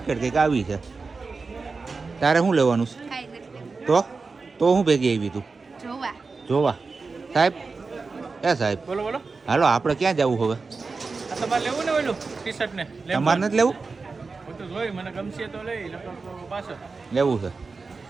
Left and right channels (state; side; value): quieter; left; 4.3 dB